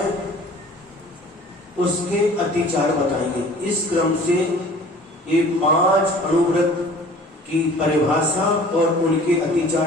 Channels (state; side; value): normal; both; correlation 0.47